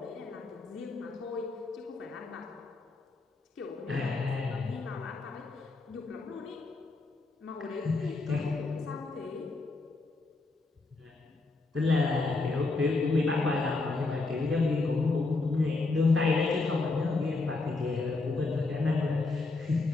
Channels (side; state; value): right; quieter; 3.5 dB